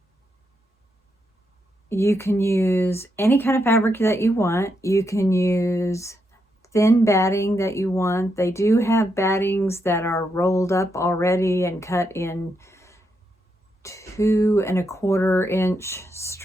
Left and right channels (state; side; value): normal; both; correlation 0.81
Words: You can use any kind of fabric that you want. You can use thin batting that you want. They do have battings that are rolled up already and cut in 2¼ inch